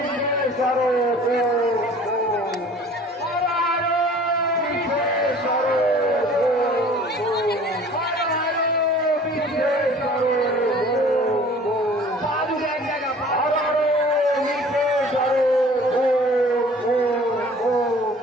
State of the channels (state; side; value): normal; both; correlation 0.48